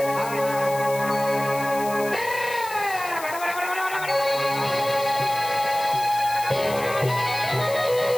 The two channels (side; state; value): left; noise; hiss, 13 dB below the sound